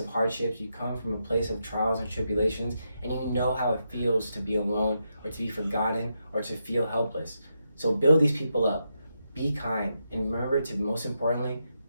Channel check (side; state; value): both; inverted; correlation -0.84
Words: hardships, you come from a place of trials and tribulations, and you know how it feels to be alone, or to be forgotten, or to feel helpless. So build these people up, be kind, and remember to, most importantly,